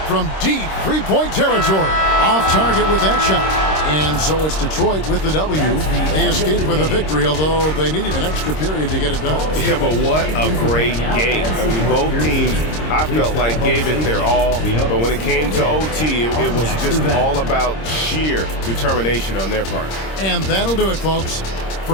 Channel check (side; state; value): right; late; 26 ms